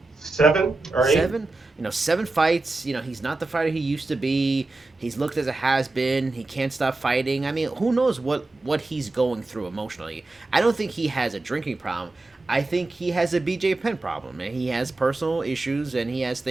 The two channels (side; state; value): left; quieter; 3.1 dB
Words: 7 or 8? 7. 7 fights. He's not the fighter he used to be. He's looked as a has-been. He can't stop fighting. I mean, who knows what he's going through emotionally. I don't think he has a drinking problem. I think he has a BJ Penn problem, and he has personal issues, and he has